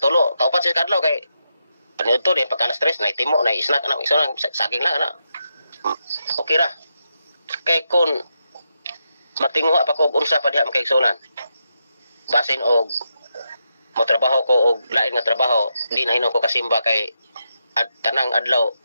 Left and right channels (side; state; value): both; inverted; correlation -0.84